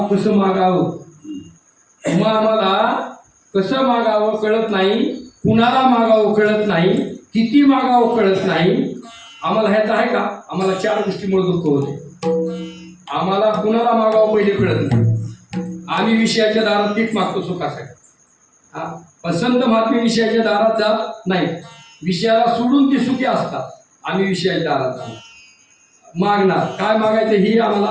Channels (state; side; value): identical; both; correlation 1.00